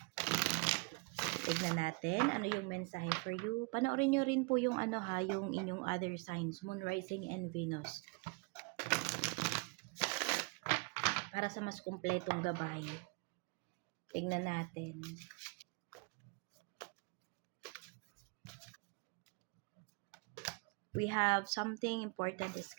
Tignan natin ano yung mensahe for you. Panoorin nyo rin po yung yung inyong other signs, Moon, Rising, and Venus. Para sa mas kumpletong gabay. Tignan natin. We have something important is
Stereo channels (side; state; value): left; quieter; 32.3 dB